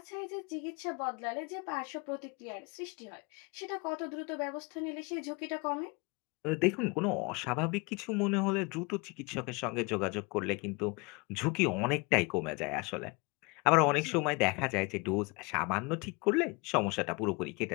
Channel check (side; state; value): right; quieter; 28.1 dB